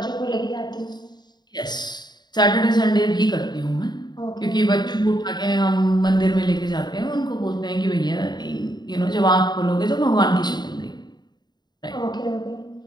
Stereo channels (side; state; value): right; late; 0.21 ms